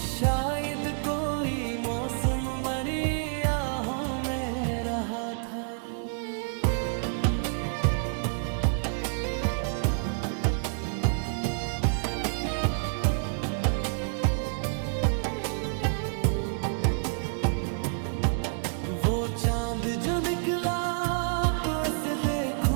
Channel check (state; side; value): silent; left; 59 dB below the other